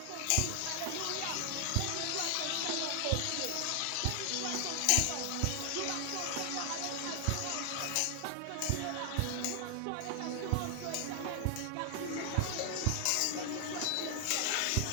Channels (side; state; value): both; different; correlation 0.00